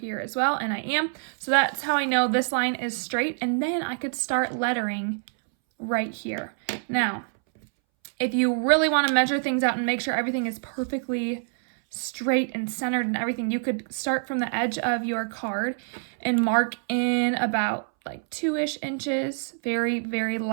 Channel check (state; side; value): silent; left; 61 dB below the other